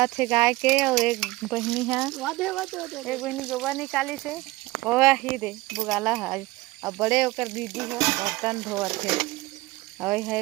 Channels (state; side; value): quieter; left; 20.3 dB